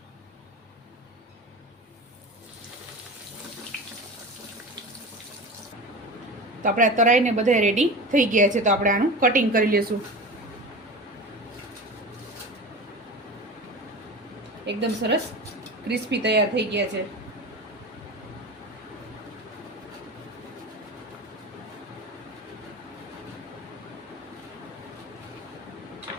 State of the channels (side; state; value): both; normal; correlation 0.31